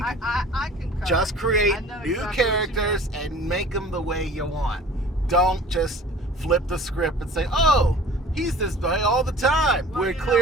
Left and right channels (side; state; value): both; normal; correlation 0.46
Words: can I concur. just create I know new exactly what you characters and make them the way you want. Don't just flip the script and say, "Oh, he's this way all the time." Well, Where you know